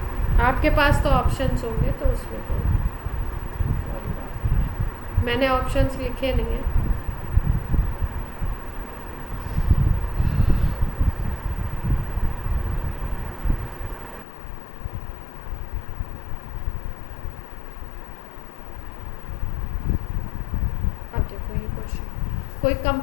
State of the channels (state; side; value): drops out; right; at 14.2 s